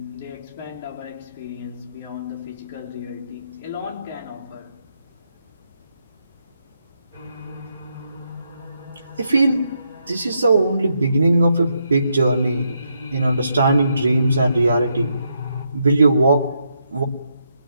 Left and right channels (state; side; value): inverted; both; correlation -0.79